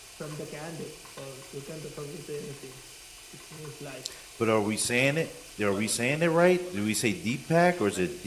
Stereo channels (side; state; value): both; identical; correlation 1.00